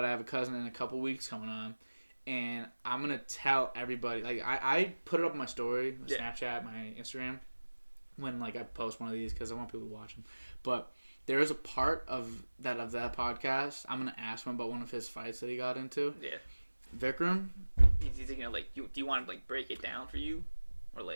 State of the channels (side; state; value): both; inverted; correlation -1.00